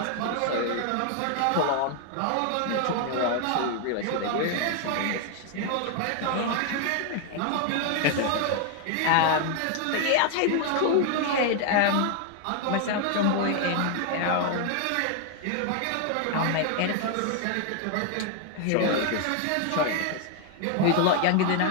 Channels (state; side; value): different; both; correlation 0.00